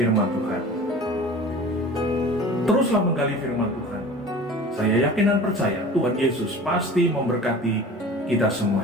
Tuhan. Teruslah menggali firman Tuhan. Saya yakin dan percaya Tuhan Yesus pasti memberkati kita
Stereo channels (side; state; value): both; normal; correlation 0.40